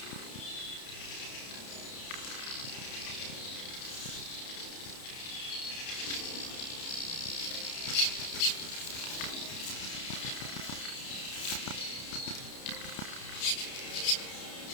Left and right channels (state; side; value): late; right; 31 ms